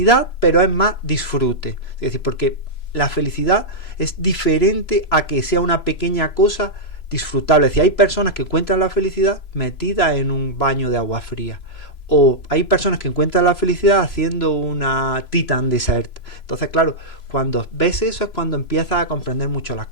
pero es más disfrute. Es decir, porque la felicidad es diferente a que sea una pequeña cosa disfrutable. Es decir, hay personas que encuentran la felicidad metida en un baño de agua fría, o hay personas que encuentran la felicidad haciendo una Titan Desert. Entonces, claro, cuando ves eso es cuando empiezas a comprender mucho las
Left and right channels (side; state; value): right; late; 3.0 ms